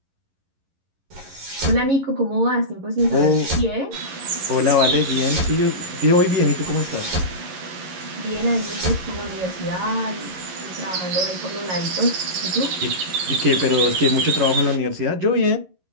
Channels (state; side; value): late; left; 11 ms